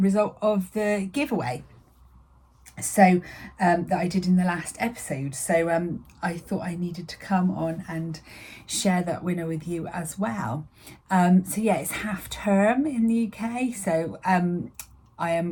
of the giveaway that I did in the last episode, so I thought I needed to come on and share that winner with you as well. It's half term in the UK, so I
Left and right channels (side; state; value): both; identical; correlation 1.00